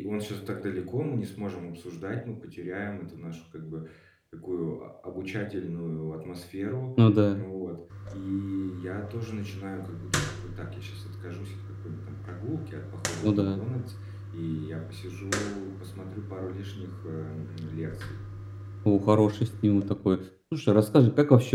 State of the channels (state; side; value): identical; both; correlation 1.00